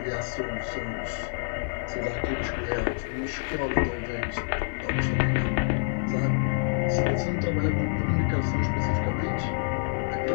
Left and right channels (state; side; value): silent; right; 60 dB below the other